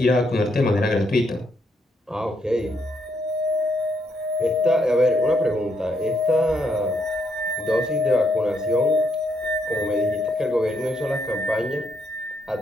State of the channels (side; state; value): both; normal; correlation 0.76